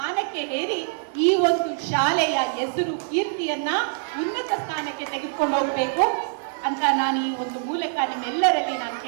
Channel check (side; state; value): left; silent; digital silence